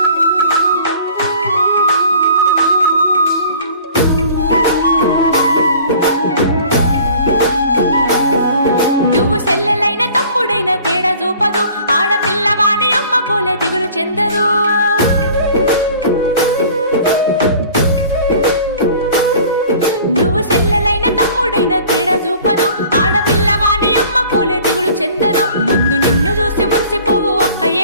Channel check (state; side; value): inverted; both; correlation -0.48